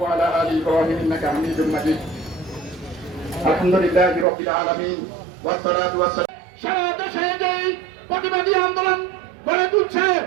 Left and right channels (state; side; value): drops out; left; at 4.2 s